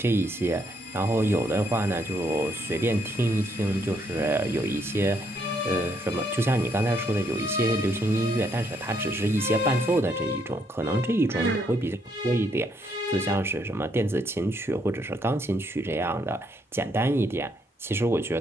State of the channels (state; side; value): normal; both; correlation 0.73